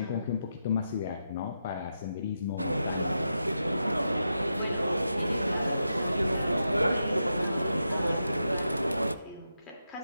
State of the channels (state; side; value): inverted; both; correlation -0.87